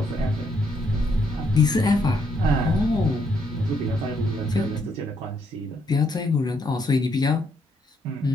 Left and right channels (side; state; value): both; normal; correlation 0.74